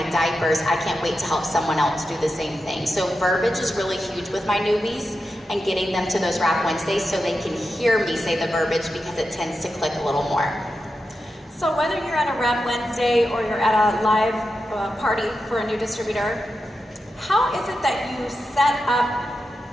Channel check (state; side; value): normal; both; correlation 0.89